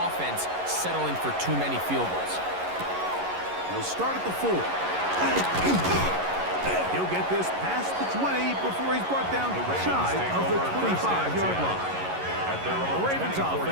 offense settling for too many field goals. We'll start at the 4. He'll get this past the 20 before he's brought down shy of the 25-yard line. The Ravens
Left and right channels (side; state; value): left; late; 11 ms